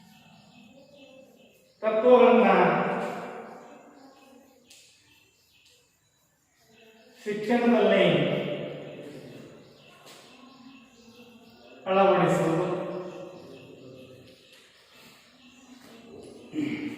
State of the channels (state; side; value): identical; both; correlation 1.00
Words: ತತ್ವಗಳನ್ನ ಶಿಕ್ಷಣದಲ್ಲಿ ಅಳವಡಿಸುವುದು,